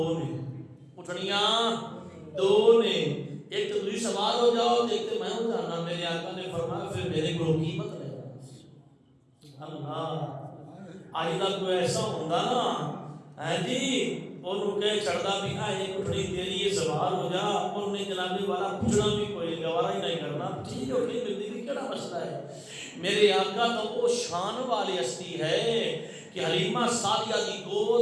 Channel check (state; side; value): identical; both; correlation 1.00